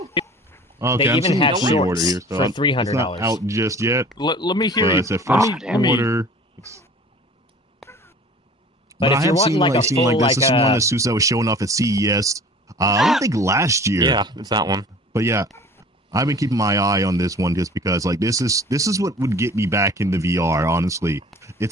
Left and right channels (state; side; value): normal; both; correlation 0.45